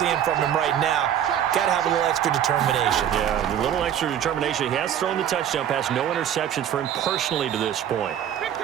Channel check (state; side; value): quieter; left; 10.0 dB